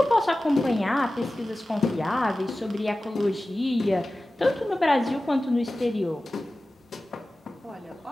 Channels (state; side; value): normal; both; correlation 0.96